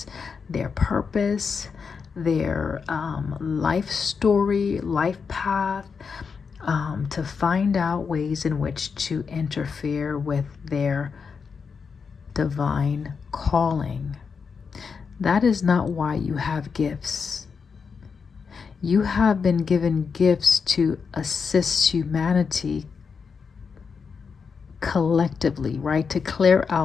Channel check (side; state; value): right; quieter; 5.7 dB